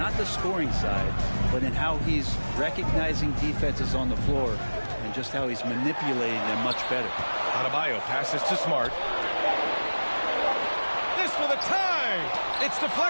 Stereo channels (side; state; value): both; inverted; correlation -1.00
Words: the scoring side, but in how he's recognizing defenses on the floor and just how he's manipulating them much better. Adebayo passes to Smart. This for the tie. It's